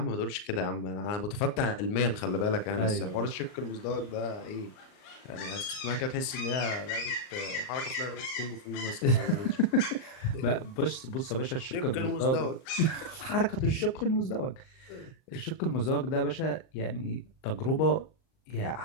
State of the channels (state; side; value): late; right; 38 ms